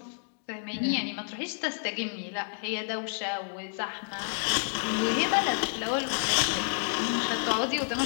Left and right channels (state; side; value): silent; right; digital silence